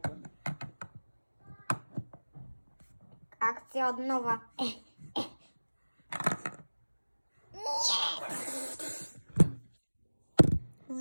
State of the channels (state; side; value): inverted; both; correlation -1.00